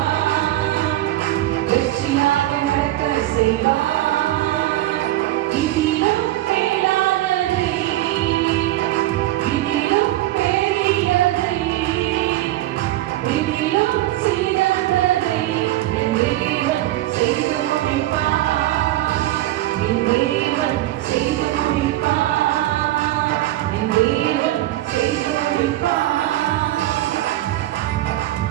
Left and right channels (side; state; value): left; quieter; 15.8 dB